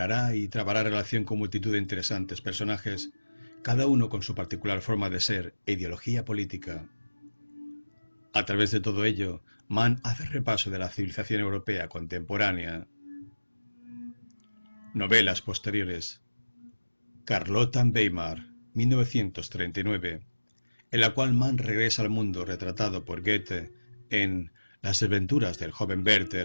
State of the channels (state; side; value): inverted; both; correlation -1.00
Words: y trabará relación con multitud de interesantes personajes, cada uno con su particular forma de ser e ideología política. A través de todo ello, Mann hace repaso de la civilización europea contemporánea. Novelas posteriores. Carlotta Weimar, 1939, en la cual Mann regresa al mundo retratado por Goethe en Las aventuras del joven